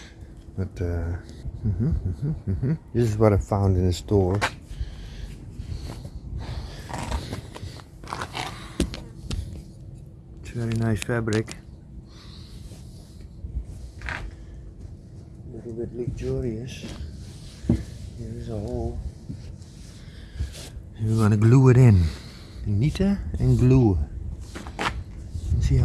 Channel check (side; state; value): both; identical; correlation 1.00